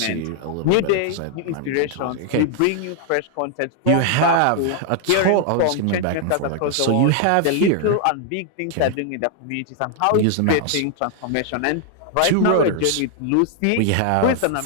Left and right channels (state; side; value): different; both; correlation 0.00